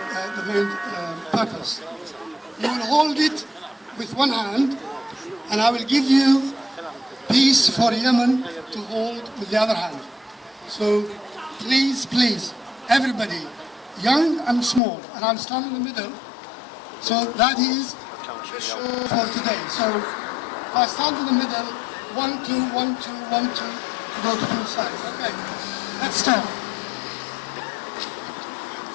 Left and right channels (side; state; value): right; drops out; at 14.8 s